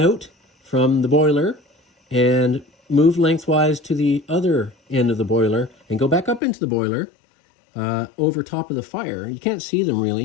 from the boiler and move lengthwise to the other end of the boiler and go back up into the boiler over top of the fire. You can't see them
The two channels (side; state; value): right; drops out; at 6.4 s